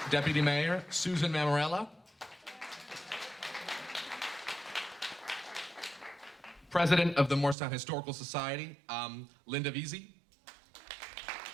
Deputy Mayor, Susan Mammarella. President of the Morristown Historical Society, Linda Veazey.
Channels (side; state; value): left; drops out; at 7.6 s